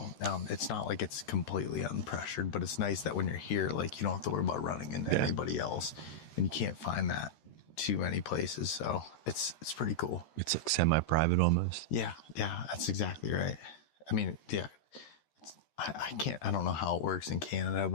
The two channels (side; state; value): right; late; 13 ms